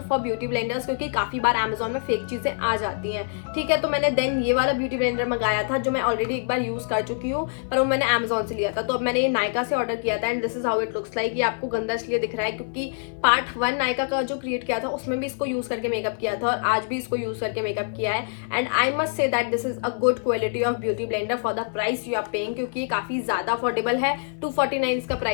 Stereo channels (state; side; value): silent; right; 58 dB below the other